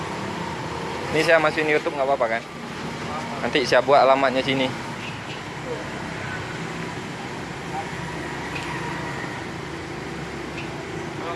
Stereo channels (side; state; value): both; identical; correlation 1.00